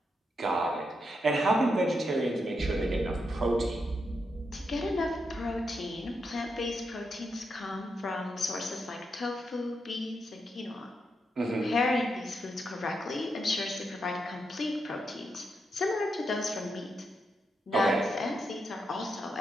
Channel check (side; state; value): both; normal; correlation 0.83